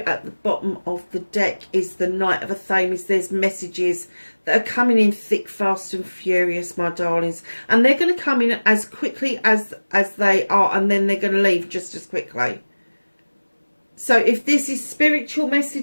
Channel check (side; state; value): both; inverted; correlation -1.00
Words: at the bottom of the deck is the Knight of Athames. There's messages that are coming in thick, fast and furious, my darlings. And they're going to come in as quickly as they are, and then they're going to leave just as quickly. So if this is spiritual